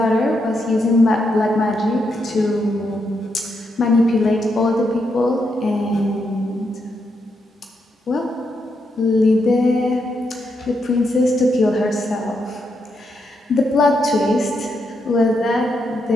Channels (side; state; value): both; normal; correlation 0.81